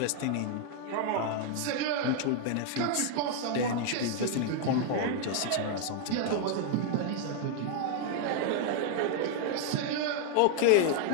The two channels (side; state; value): both; different; correlation 0.00